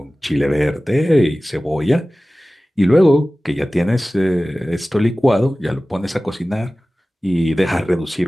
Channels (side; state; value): both; normal; correlation 0.97